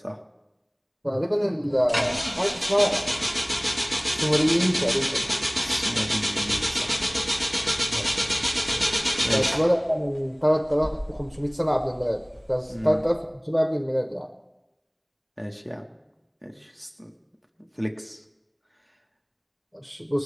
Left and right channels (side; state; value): both; identical; correlation 1.00